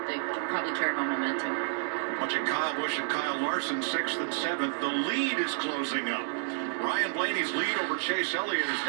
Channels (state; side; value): silent; left; digital silence